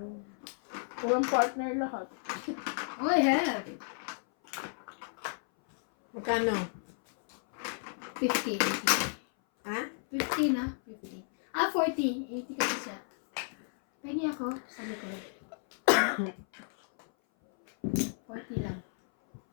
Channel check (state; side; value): silent; right; 56 dB below the other